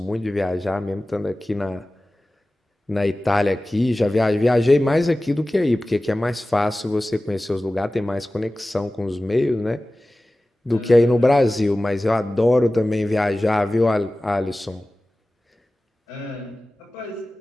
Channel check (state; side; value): normal; both; correlation 0.97